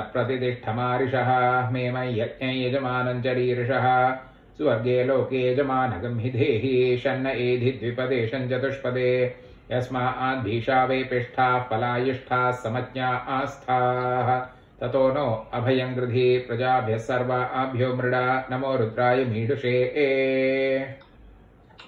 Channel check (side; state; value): both; identical; correlation 1.00